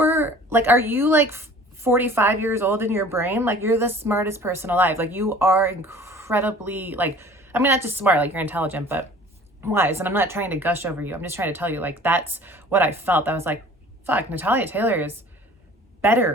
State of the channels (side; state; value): both; normal; correlation 0.47